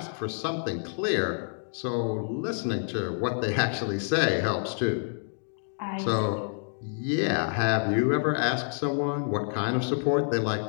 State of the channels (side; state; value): right; silent; digital silence